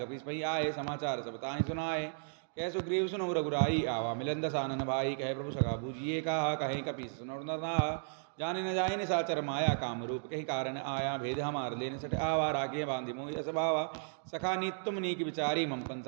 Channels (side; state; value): left; silent; digital silence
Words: पही आए समाचार सब ताहि सुनाए कह सुग्रीव सुनो रघुराई आवा मिलन दसानन भाई कहे प्रभु सखा बूझिए कहा कहीं कपीस सुनो नरना जाने न जाए निशाचर माया काम रूप कहीं कारण आया भेद हमार लेने सट आवा रागे बांधि मोहि असभावा सखा नीत तुम नीक विचारी ममपन